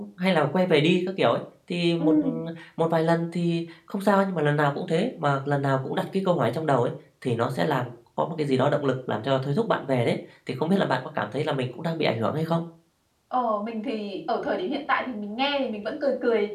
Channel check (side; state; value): both; identical; correlation 1.00